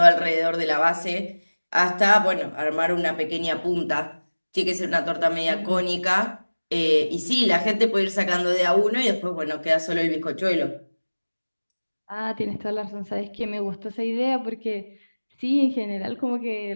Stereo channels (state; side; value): inverted; both; correlation -1.00